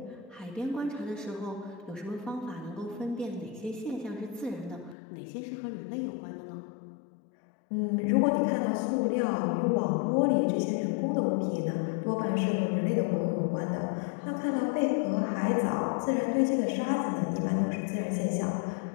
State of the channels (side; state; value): right; drops out; at 5.0 s